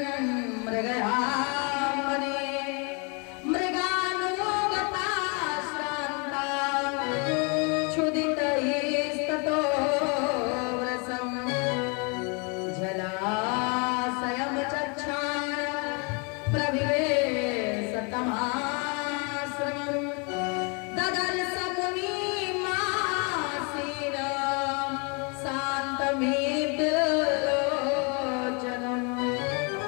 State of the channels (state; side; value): quieter; right; 33.4 dB